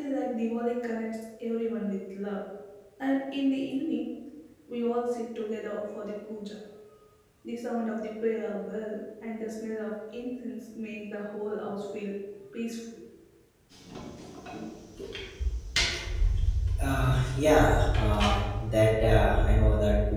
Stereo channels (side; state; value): both; identical; correlation 1.00